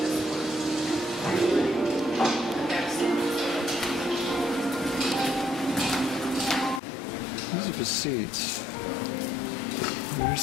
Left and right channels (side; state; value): right; drops out; at 6.8 s